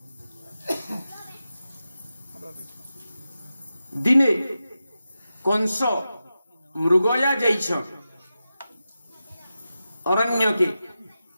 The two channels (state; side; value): inverted; both; correlation -0.91